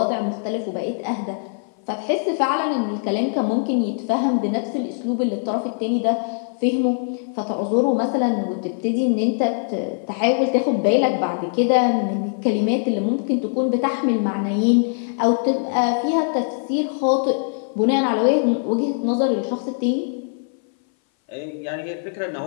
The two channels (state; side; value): silent; right; 60 dB below the other